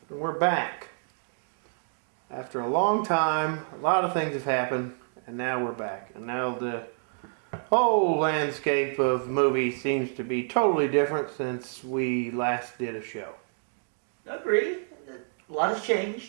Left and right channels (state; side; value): silent; left; digital silence